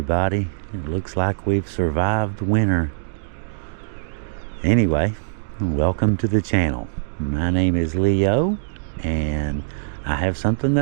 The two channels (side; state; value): left; silent; digital silence